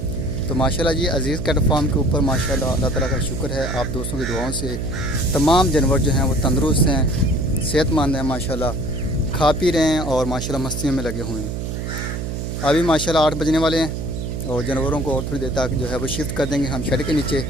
तो माशाल्लाह जी, अज़ीज़ कैट फार्म के ऊपर माशाल्लाह अल्लाह ताला का शुक्र है। आप दोस्तों की दुआओं से तमाम जानवर जो हैं वो तंदुरुस्त हैं, सेहतमंद हैं, माशाल्लाह खा पी रहे हैं और माशाल्लाह मस्तियों में लगे हुए हैं। अभी माशाल्लाह 8 बजने वाले हैं और जानवरों को और थोड़ी देर तक जो है वो शिफ्ट कर देंगे हम शेड के नीचे।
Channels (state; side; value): noise; right; hum, 4 dB below the sound